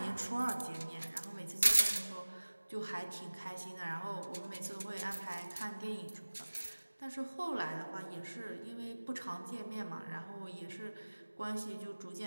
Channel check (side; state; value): both; inverted; correlation -1.00